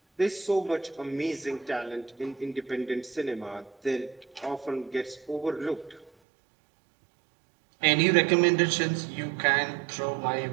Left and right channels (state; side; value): drops out; left; at 6.1 s